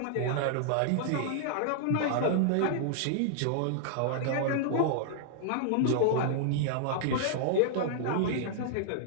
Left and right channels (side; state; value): both; different; correlation -0.01